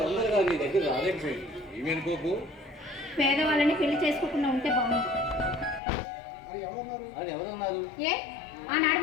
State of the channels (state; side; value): drops out; right; at 5.8 s